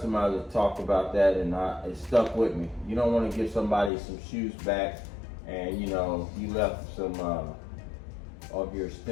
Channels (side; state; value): right; drops out; at 3.9 s